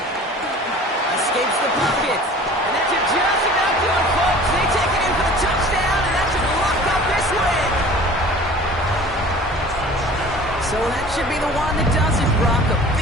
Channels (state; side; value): normal; both; correlation 0.44